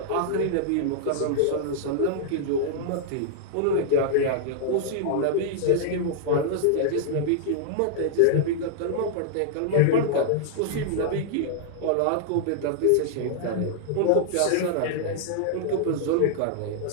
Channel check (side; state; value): both; different; correlation -0.01